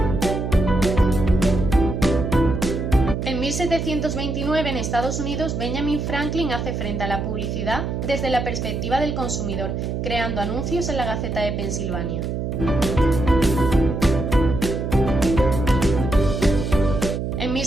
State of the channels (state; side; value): noise; right; hum, 3 dB below the sound